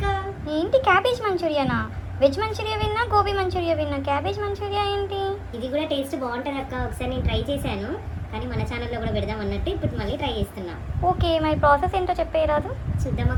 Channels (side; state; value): both; identical; correlation 1.00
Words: ఏంటి క్యాబేజ్ మంచూరియానా? వెజ్ మంచూరియా విన్నా, గోబీ మంచూరియా విన్నా, క్యాబేజ్ మంచూరియా ఏంటి? ఇది కూడా టేస్ట్ బాగుంటుంది అక్క. ఒకసారి నేను ట్రై చేశాను, కానీ మన ఛానల్లో కూడా పెడదాం అన్నట్టు ఇప్పుడు మళ్ళీ ట్రై చేస్తున్నా. ఓకే, మరి ప్రాసెస్ ఏంటో చెప్పేయరాదు? చూద్దాం